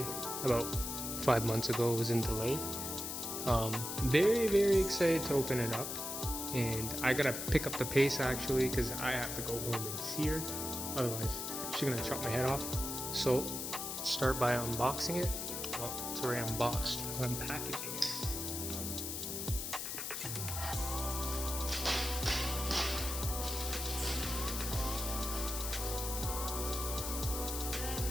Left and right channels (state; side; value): noise; left; hiss, 4 dB below the sound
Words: about 5 months ago. It was in delay. Very excited to open it up, and I gotta pick up the pace actually because I have to go home and see her, otherwise she's gonna chop my head off. So start by unboxing it. Well, it's already unboxed. I'm packaging it.